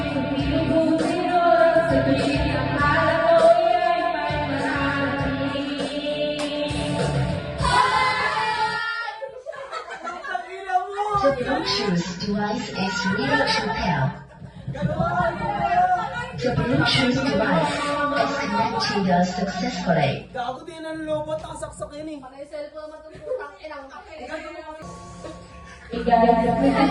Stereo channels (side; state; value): both; identical; correlation 1.00